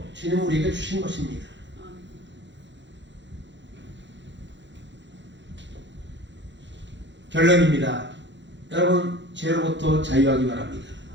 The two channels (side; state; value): left; late; 0.53 ms